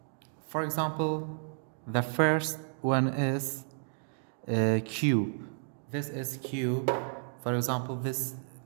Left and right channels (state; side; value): silent; left; 56 dB below the other